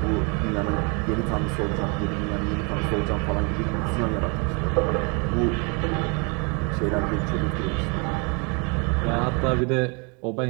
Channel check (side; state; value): left; quieter; 33.3 dB